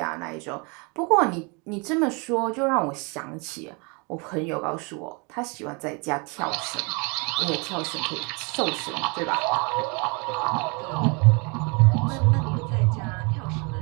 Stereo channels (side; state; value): left; quieter; 31.1 dB